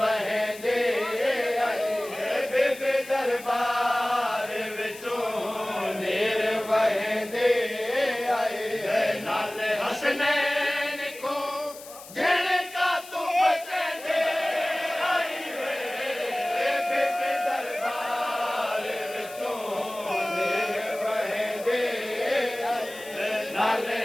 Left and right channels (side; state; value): left; noise; hiss, 17 dB below the sound